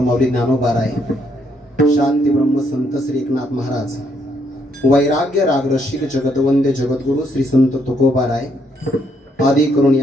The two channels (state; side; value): normal; both; correlation 0.72